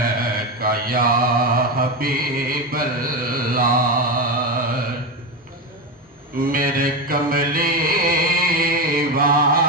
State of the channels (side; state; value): both; normal; correlation 0.14